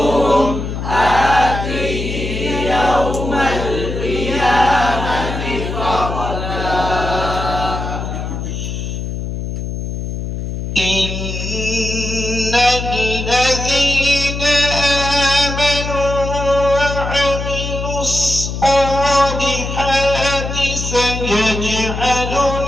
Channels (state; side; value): noise; left; hum, 5 dB below the sound